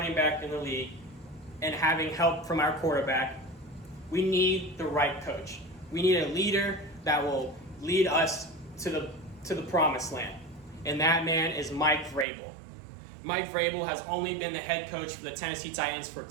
back in the league and having help from our quarterback, we need the right coach. We need a leader that will lead us to the promised land. And that man is Mike Vrabel. Mike Vrabel has only been the head coach for the Tennessee Titans for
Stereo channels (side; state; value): left; drops out; at 12.2 s